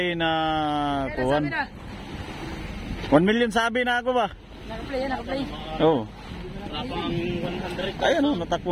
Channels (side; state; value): both; identical; correlation 1.00